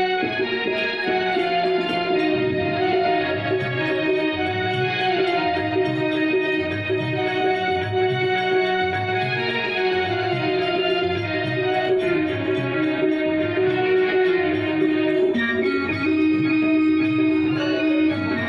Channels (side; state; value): right; noise; rumble, 27 dB below the sound